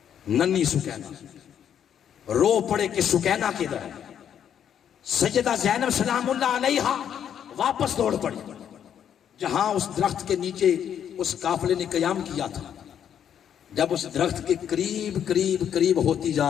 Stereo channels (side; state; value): right; quieter; 9.1 dB